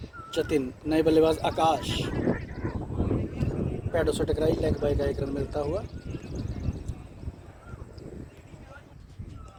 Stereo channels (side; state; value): both; identical; correlation 1.00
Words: जतिन, नए बल्लेबाज आकाश, पैडों से टकराई, लेग बाय का एक रन मिलता हुआ।